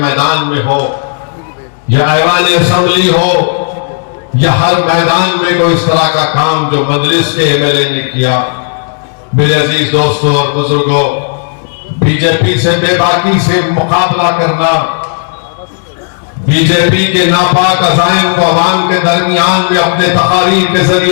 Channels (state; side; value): silent; right; 71 dB below the other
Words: में हो, या ऐवान असेंबली हो, या हर मैदान में कोई इस तरह का काम जो मजलिस के एमएलए ने किया। मेरे अजीज दोस्तों और बुजुर्गों, बीजेपी से बेबाकी से मुकाबला करना, बीजेपी के नापाक अज़ाइम को अवाम के दरमियान में अपने तकारीर के